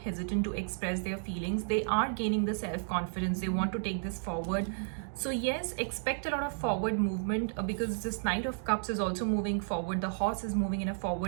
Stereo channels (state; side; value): silent; left; digital silence